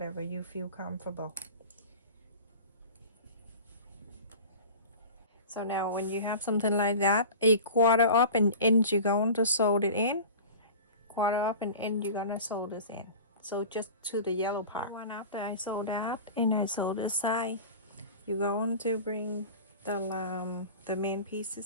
you feel comfortable. So now when you have something like that, 1/4 of an inch, you're going to sew it in. 1/4 of an inch, you're gonna sew this in. So just to the yellow part. One after I sew that, and I sew this side, you're going to bring the main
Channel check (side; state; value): both; inverted; correlation -0.36